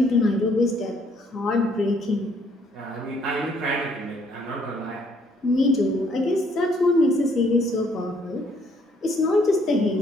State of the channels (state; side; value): normal; both; correlation 0.66